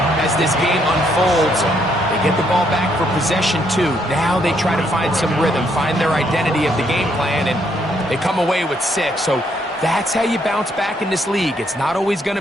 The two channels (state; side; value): normal; both; correlation 0.72